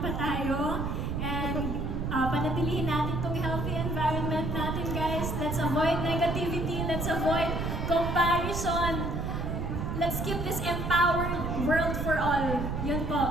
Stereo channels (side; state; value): right; noise; rumble, 2 dB below the sound